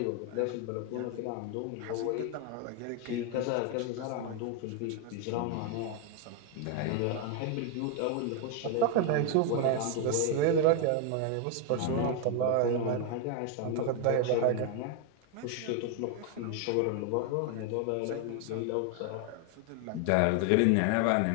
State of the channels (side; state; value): both; different; correlation 0.01